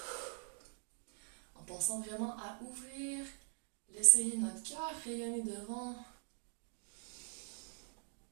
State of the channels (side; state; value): left; silent; digital silence